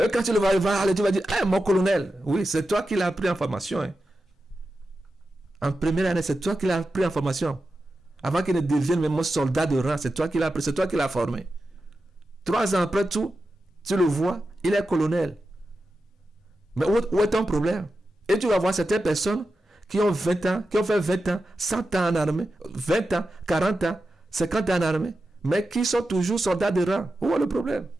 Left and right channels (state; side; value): normal; both; correlation 0.91